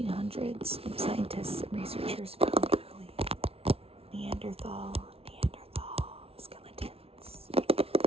scientists and researchers found early Neanderthal skeletons.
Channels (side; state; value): left; late; 0.28 ms